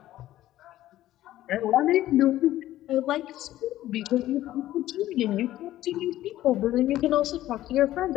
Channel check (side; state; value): right; quieter; 14.2 dB